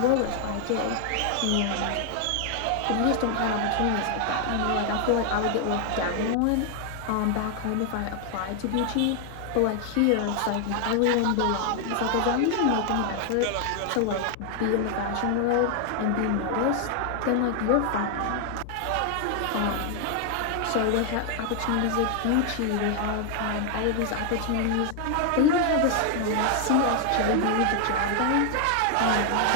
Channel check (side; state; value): both; different; correlation 0.00